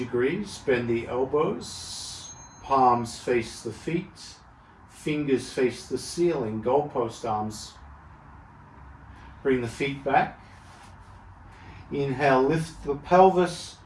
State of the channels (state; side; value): identical; both; correlation 1.00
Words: bend the elbows, palms face the feet, fingers face the ceiling, goalpost arms. Bring the feet back. Inhale, lift the pelvis,